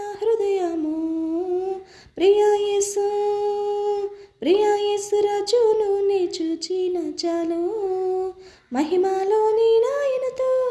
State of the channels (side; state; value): both; identical; correlation 1.00